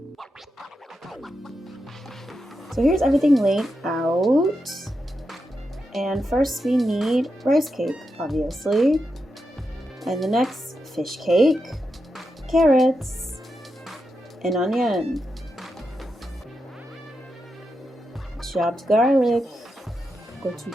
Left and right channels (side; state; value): both; normal; correlation 0.87